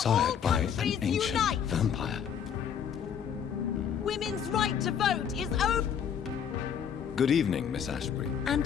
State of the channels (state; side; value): quieter; right; 8.0 dB